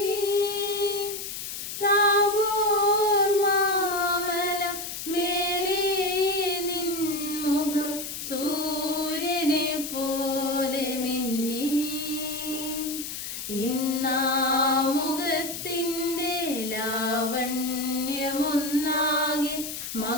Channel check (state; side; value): noise; left; hiss, 7 dB below the sound